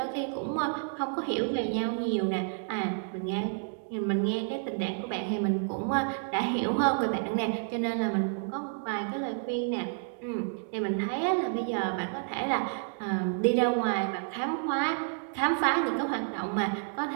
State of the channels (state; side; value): silent; left; digital silence